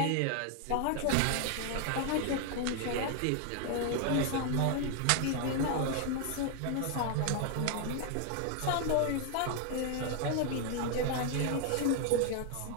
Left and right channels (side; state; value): both; different; correlation 0.00